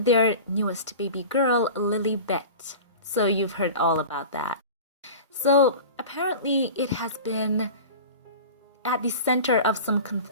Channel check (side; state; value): both; inverted; correlation -0.35